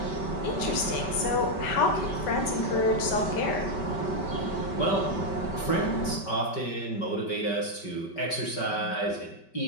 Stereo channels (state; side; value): late; right; 5.2 ms